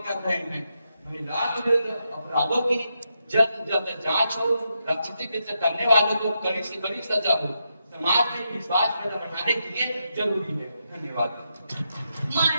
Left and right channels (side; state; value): both; inverted; correlation -0.84